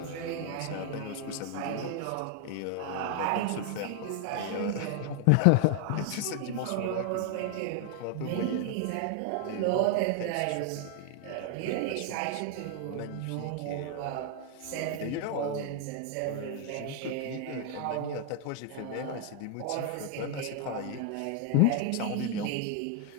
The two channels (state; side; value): different; both; correlation 0.00